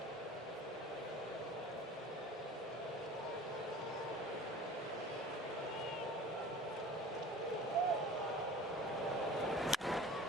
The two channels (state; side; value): normal; both; correlation 0.42